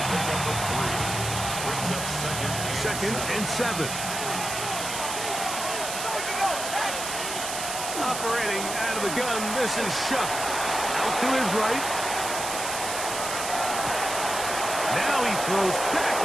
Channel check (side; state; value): right; noise; hiss, 5 dB below the sound